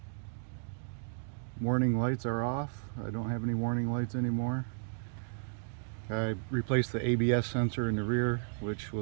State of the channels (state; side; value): silent; left; digital silence